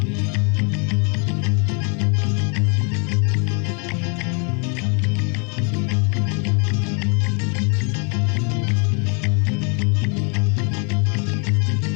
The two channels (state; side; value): quieter; right; 36.1 dB